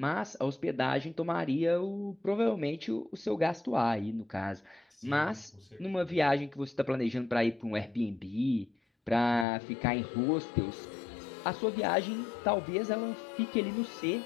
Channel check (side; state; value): right; drops out; at 9.5 s